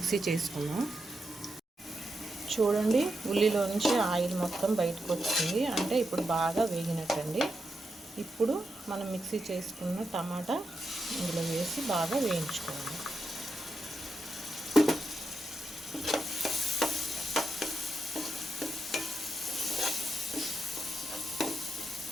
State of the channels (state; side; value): normal; both; correlation 0.86